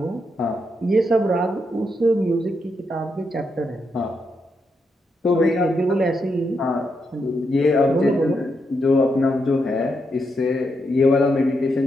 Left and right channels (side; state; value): both; normal; correlation 0.82